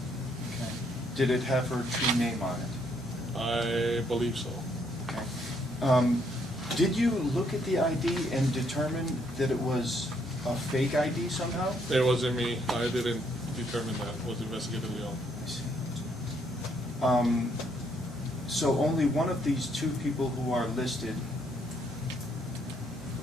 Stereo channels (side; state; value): both; normal; correlation 0.71